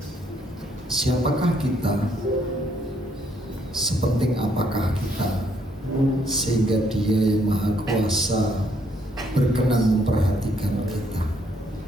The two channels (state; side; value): normal; both; correlation 0.70